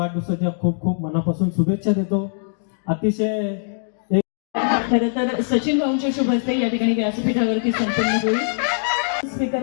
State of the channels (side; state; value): right; silent; digital silence